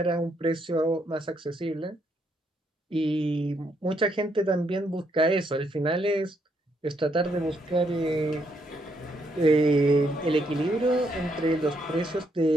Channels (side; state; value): both; normal; correlation 0.75